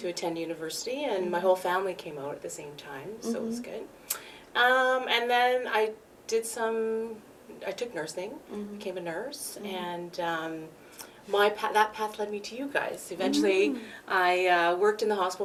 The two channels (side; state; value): both; identical; correlation 1.00